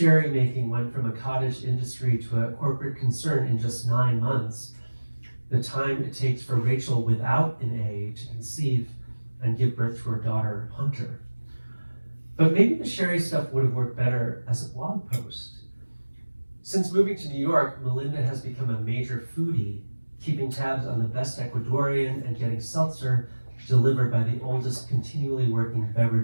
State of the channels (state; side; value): inverted; both; correlation -1.00